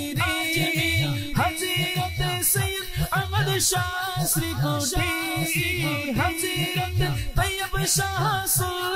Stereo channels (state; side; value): identical; both; correlation 1.00